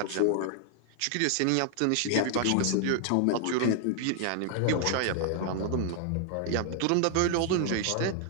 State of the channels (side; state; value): both; different; correlation 0.00